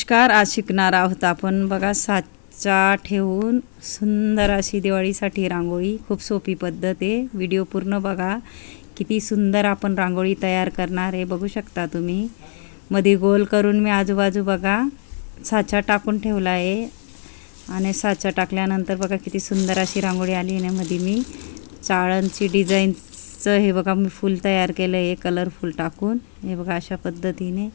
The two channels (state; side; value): silent; right; digital silence